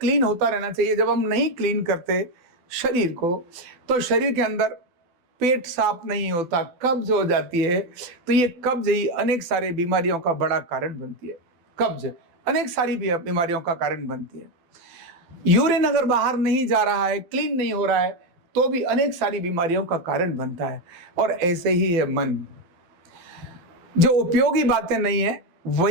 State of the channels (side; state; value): left; late; 12 ms